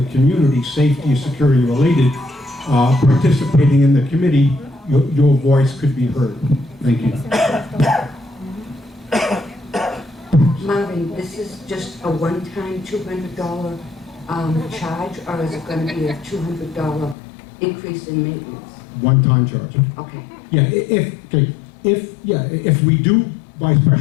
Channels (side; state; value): right; drops out; at 17.2 s